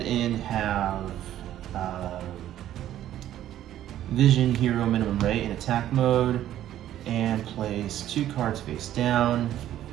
and have Vision Hero Minimum Ray in attack mode and place 2 cards face down.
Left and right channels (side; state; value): left; quieter; 12.2 dB